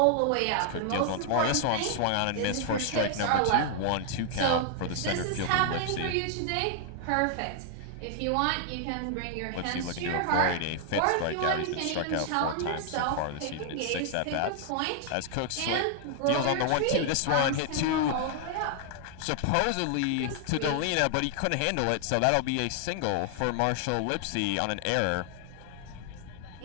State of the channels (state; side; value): different; both; correlation 0.00